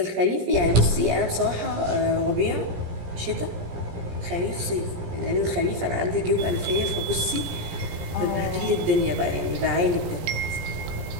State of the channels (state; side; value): late; left; 17 ms